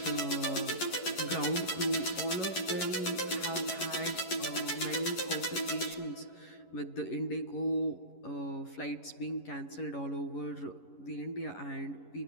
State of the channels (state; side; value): late; right; 11 ms